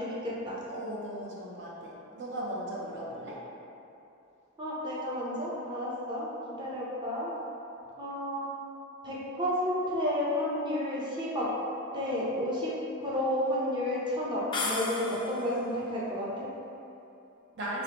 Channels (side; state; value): both; normal; correlation 0.15